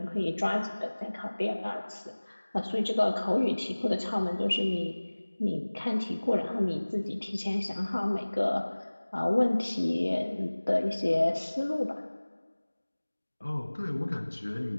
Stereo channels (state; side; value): inverted; both; correlation -1.00